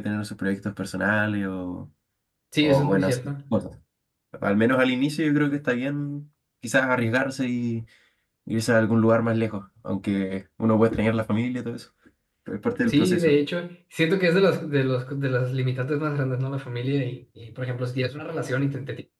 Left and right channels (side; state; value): both; identical; correlation 1.00